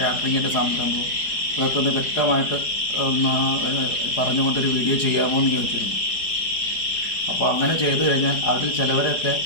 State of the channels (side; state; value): right; late; 4.9 ms